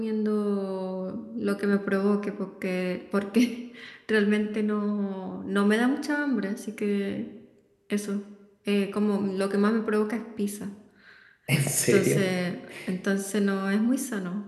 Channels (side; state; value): both; identical; correlation 1.00